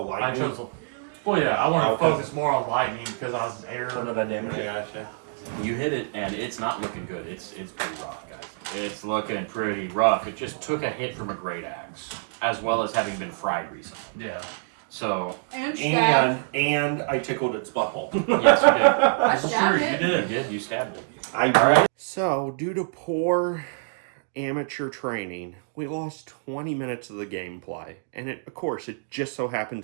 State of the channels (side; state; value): left; silent; digital silence